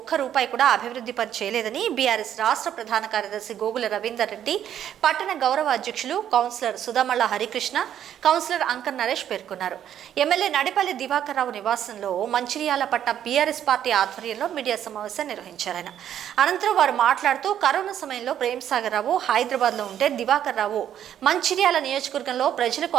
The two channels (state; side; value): quieter; left; 10.2 dB